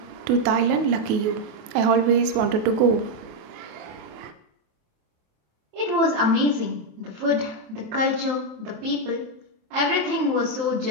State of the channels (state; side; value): late; left; 28 ms